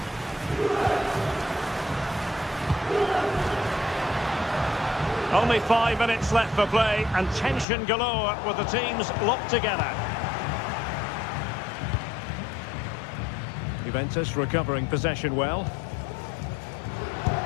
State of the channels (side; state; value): right; drops out; at 7.7 s